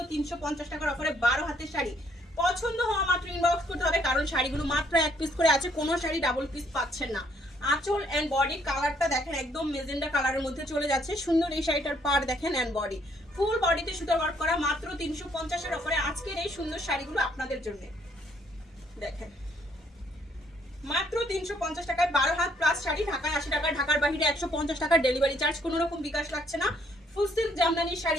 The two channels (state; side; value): normal; both; correlation 0.67